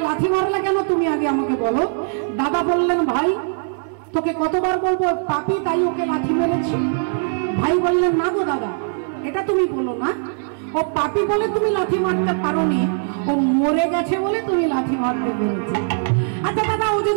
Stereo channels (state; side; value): silent; left; 63 dB below the other